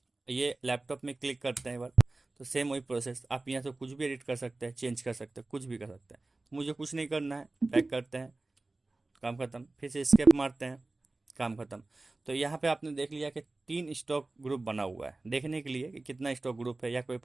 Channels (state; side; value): quieter; left; 3.2 dB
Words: ये लैपटॉप में क्लिक करते हैं एक बार, तो सेम वही प्रोसेस, आप यहाँ से कुछ भी एडिट कर सकते हैं, चेंज कर सकते हैं, कुछ भी कर सकते हैं। तो मुझे कुछ नहीं करना है, बैक करते हैं, काम खत्म, फिर से स्केप मारते हैं, काम खत्म। तो यहाँ पे आपने देख लिया कि 3 स्टॉक ग्रुप बना हुआ है, देखने के लिए कि कितना स्टॉक ग्रुप है या कोई